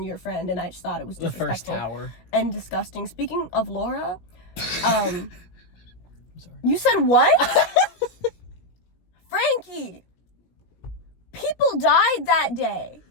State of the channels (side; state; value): right; late; 17 ms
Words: your friend, and I just thought it was disrespectful. The first tower. And disgusting. Speaking of Laura, I'm sorry. You said what? Frankie! People died that day.